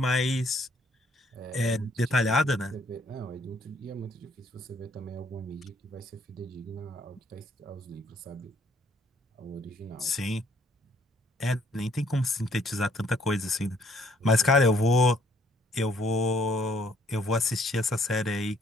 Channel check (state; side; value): normal; both; correlation 0.65